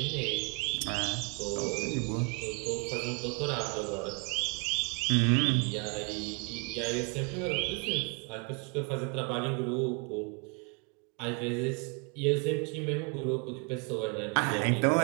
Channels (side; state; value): left; quieter; 33.5 dB